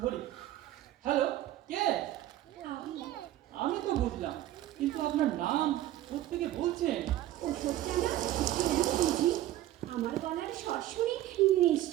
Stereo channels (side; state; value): left; quieter; 14.1 dB